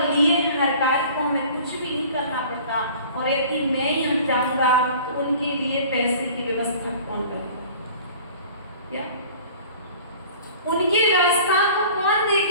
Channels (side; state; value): both; inverted; correlation -0.46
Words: लिए हर कार्य को हमें कुछ भी नहीं करना पड़ता, और यदि मैं ही हट जाऊंगा तो उनके लिए पैसे की व्यवस्था कौन करेगा? क्या उनकी व्यवस्था को कौन